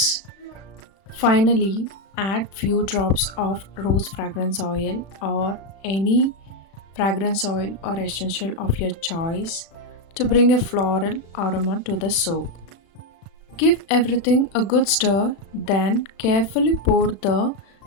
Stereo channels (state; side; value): late; right; 36 ms